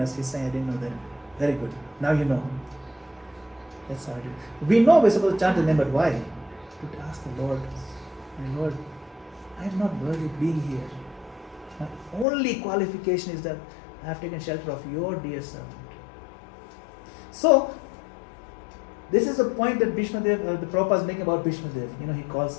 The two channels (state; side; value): drops out; right; at 12.2 s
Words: He's saying, I didn't know that. Very good. Now you know. That's how it is. We know we're supposed to chant the name, but why? To ask the Lord, my Lord, I am not worthy of being here. My only qualification is that I have taken shelter of your dear servant. So, this is the point that Bhishmadeva, the Prabhupada is making about Bhishmadeva. You know, he